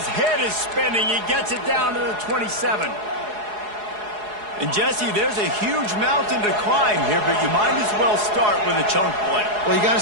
head is spinning. He gets it down to the 27. And Jesse, there's a huge mountain to climb here, but you might as well start with a chunk play. Well, you got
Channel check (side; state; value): left; late; 4.8 ms